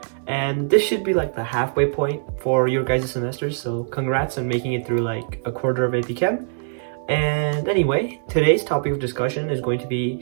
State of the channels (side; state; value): left; silent; 64 dB below the other